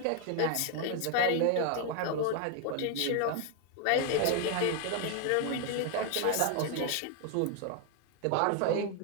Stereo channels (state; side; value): different; both; correlation 0.00